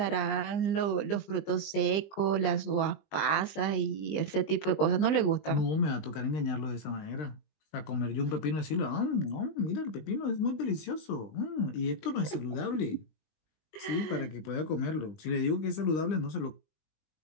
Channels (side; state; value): right; late; 20 ms